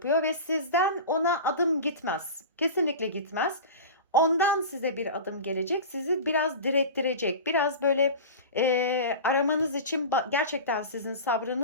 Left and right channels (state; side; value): inverted; both; correlation -0.30